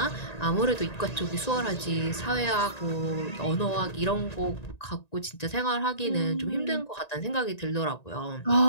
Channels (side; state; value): right; late; 1.9 ms